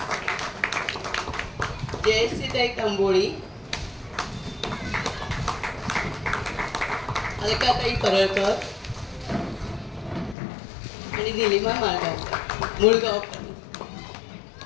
जयश्रीताई तांबोळी, अलकाताई परळकर आणि निलिमा मुळगावकर.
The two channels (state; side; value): drops out; right; at 10.4 s